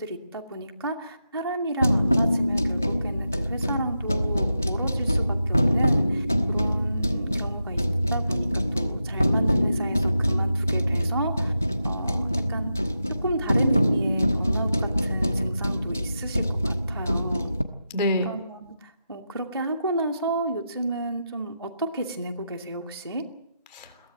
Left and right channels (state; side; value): inverted; both; correlation -0.88